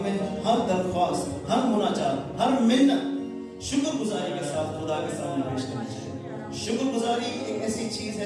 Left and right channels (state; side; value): identical; both; correlation 1.00